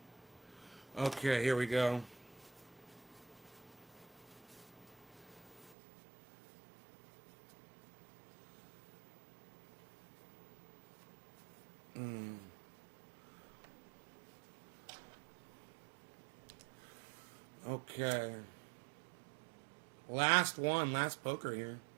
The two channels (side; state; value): left; drops out; at 5.8 s